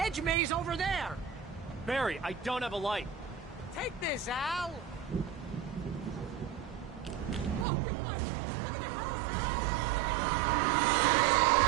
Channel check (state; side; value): drops out; left; at 7.7 s